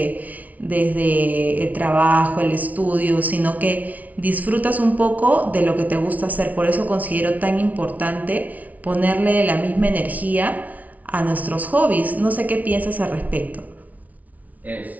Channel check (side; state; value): left; late; 0.072 ms